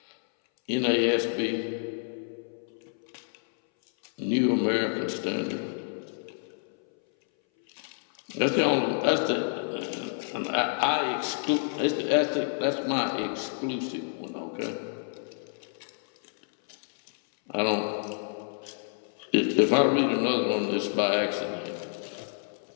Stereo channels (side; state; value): right; silent; 59 dB below the other